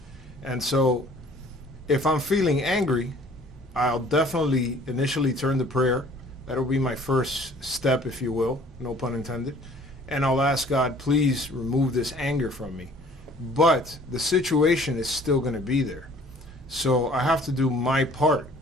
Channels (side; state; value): both; normal; correlation 0.53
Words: And so if I'm feeling angry, I'll definitely initially turn to prayer. That'll be my first step, if you will, no pun intended. And I'll ask God, please remove this anger from me. But the situation is still going to be there. So I have to do my part